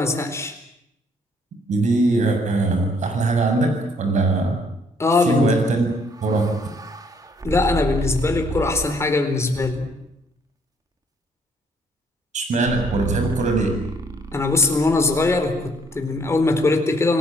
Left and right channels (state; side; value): normal; both; correlation 0.65